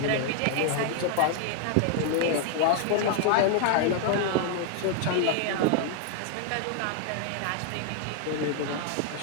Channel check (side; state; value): both; different; correlation 0.00